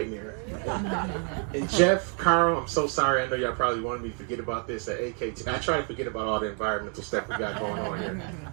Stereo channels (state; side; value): quieter; left; 36.3 dB